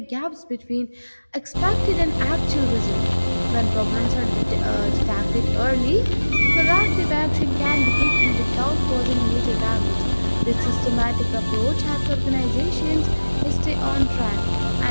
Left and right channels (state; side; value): inverted; both; correlation -1.00